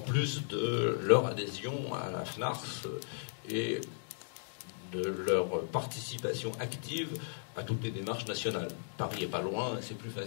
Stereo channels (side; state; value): right; silent; digital silence